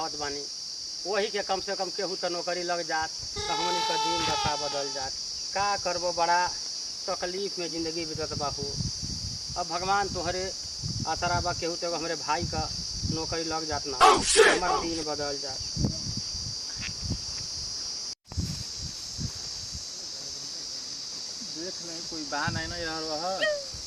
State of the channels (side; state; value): both; identical; correlation 1.00